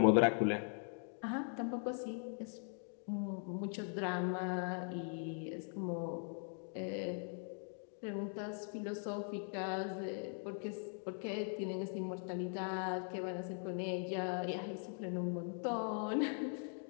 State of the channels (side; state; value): right; silent; 50 dB below the other